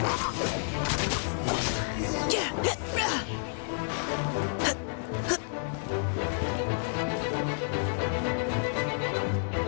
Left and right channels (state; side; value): silent; right; digital silence